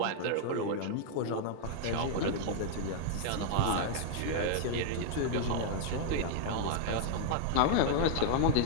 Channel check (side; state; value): both; different; correlation -0.01